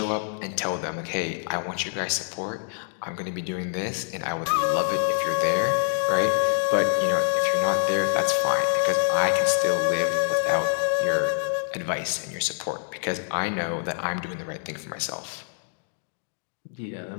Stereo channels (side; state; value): right; silent; digital silence